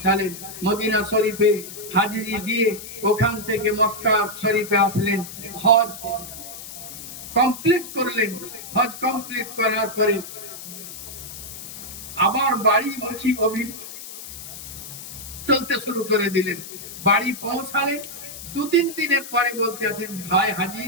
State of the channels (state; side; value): noise; left; hiss, 12 dB below the sound